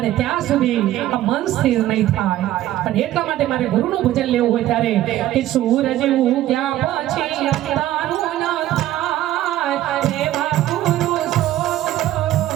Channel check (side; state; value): left; quieter; 13.8 dB